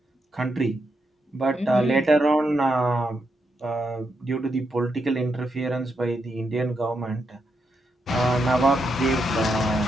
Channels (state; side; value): normal; both; correlation 0.82